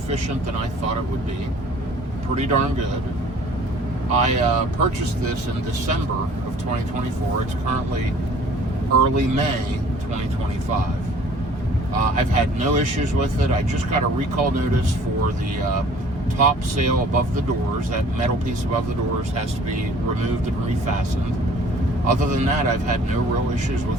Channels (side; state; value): both; normal; correlation 0.52